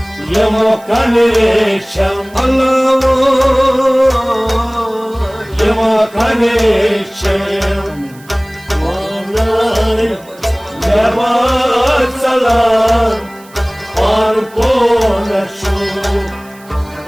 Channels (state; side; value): noise; right; hiss, 25 dB below the sound